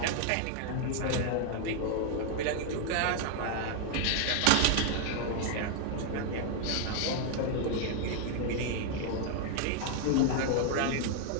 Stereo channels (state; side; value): different; both; correlation 0.00